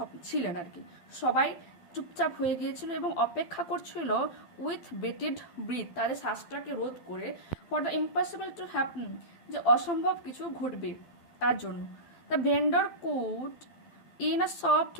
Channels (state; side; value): late; right; 12 ms